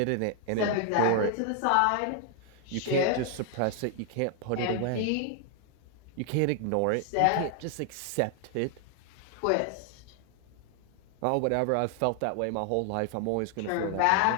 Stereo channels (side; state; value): both; different; correlation 0.00